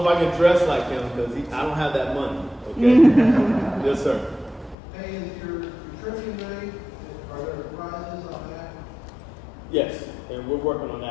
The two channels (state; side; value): drops out; right; at 4.8 s